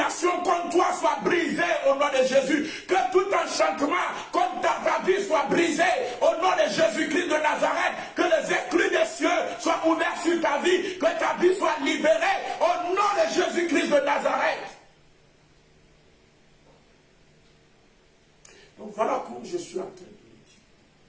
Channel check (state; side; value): identical; both; correlation 1.00